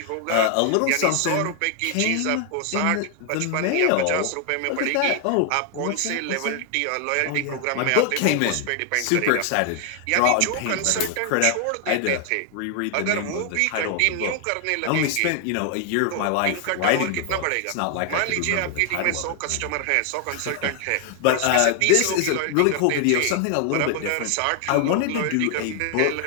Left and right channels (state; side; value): different; both; correlation 0.00